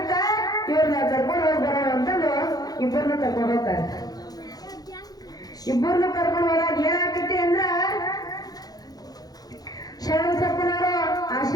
ಇವ್ರನ್ನ ಕರ್ಕೊಂಡು ಹೋಗಿ ಬರೋಣ ಅಂತಂದು ಇಬ್ಬರನ್ನ ಕರ್ಕೊಂಡು ಹೋಗ್ತಾರೆ. ಇಬ್ಬರನ್ನ ಕರ್ಕೊಂಡು ಹೋದಾಗ ಏನಾಗ್ತೈತಿ ಅಂದ್ರ, ಶರಣಬಸಪ್ಪನವರು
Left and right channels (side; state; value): right; late; 0.19 ms